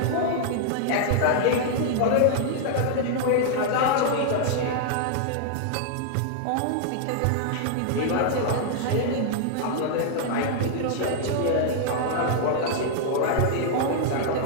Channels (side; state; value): both; different; correlation -0.01